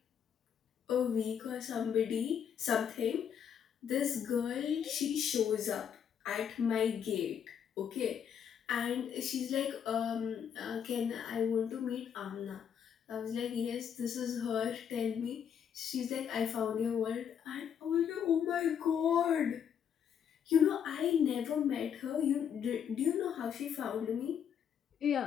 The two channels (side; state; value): right; quieter; 8.2 dB